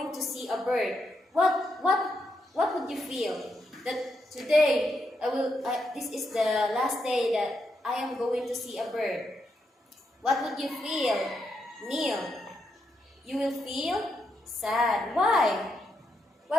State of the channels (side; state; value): both; normal; correlation 0.81